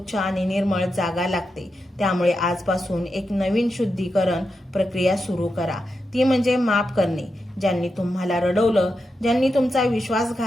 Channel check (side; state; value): both; normal; correlation 0.87